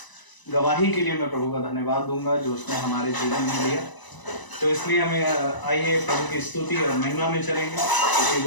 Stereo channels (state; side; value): late; right; 1.0 ms